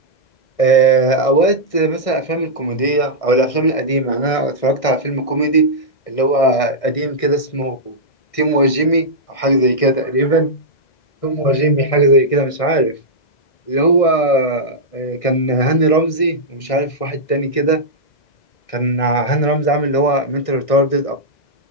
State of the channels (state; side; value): late; right; 1.6 ms